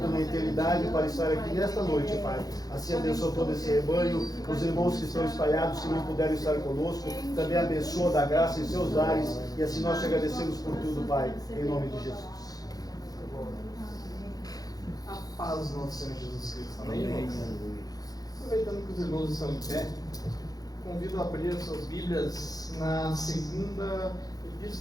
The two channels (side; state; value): right; late; 0.18 ms